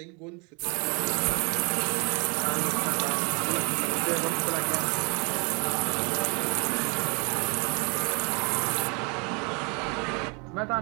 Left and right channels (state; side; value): quieter; left; 32.3 dB